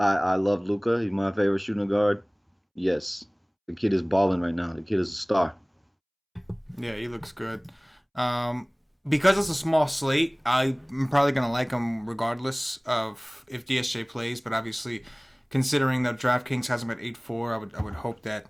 love Luka. He's my favorite shooting guard. Yes, the kid is balling right now. The kid is a star. Yeah, he looks good. because it's a small slate, I'm probably going to like him regardless of if DSJ plays. But obviously, considering that DraftKings has him at 8-4, I would hope that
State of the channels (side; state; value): both; identical; correlation 1.00